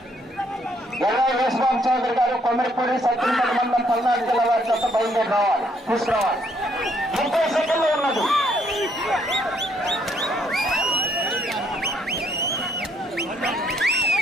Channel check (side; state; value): both; normal; correlation 0.69